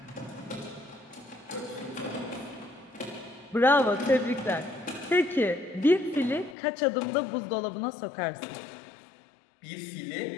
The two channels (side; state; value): right; drops out; at 6.6 s